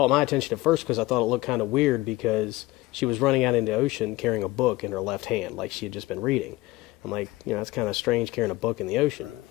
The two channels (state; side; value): quieter; right; 19.1 dB